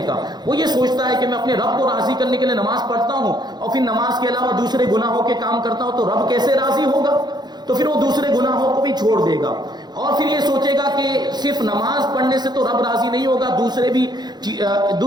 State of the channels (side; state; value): left; late; 0.20 ms